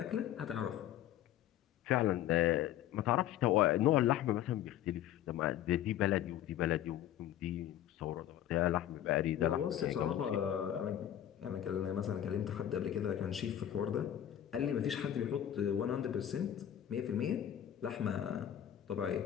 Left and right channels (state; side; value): quieter; right; 11.4 dB